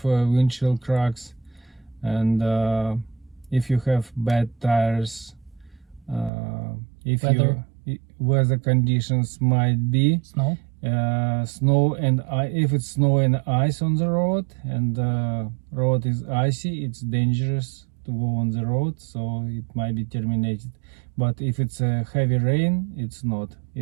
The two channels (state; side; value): drops out; left; at 6.3 s